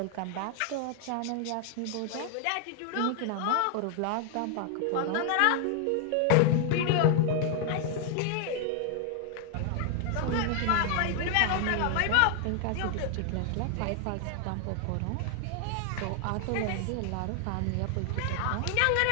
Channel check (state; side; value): different; both; correlation 0.00